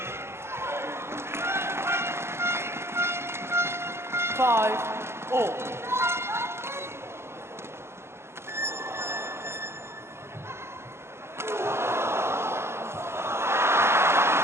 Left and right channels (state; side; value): late; left; 0.12 ms